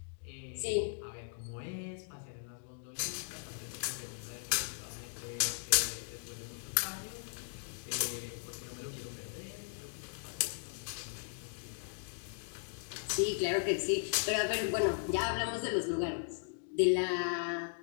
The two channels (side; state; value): right; silent; digital silence